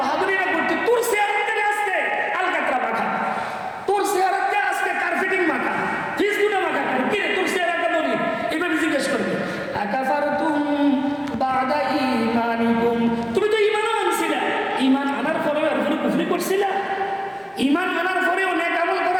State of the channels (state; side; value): identical; both; correlation 1.00